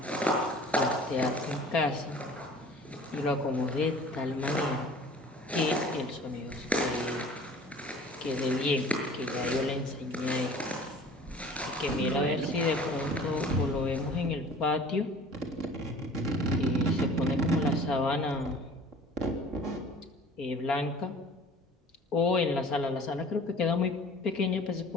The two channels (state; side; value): normal; both; correlation 0.46